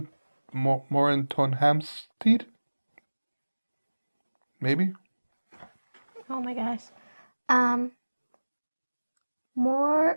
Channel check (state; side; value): inverted; both; correlation -1.00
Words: Maybe? Oh my gosh.